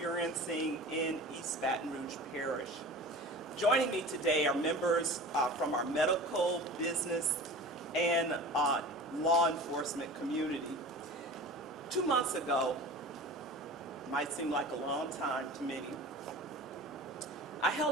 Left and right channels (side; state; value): both; normal; correlation 0.36